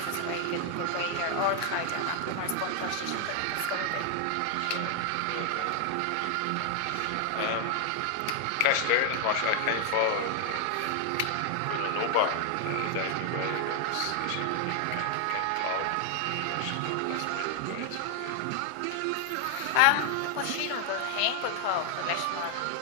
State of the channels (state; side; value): different; both; correlation 0.00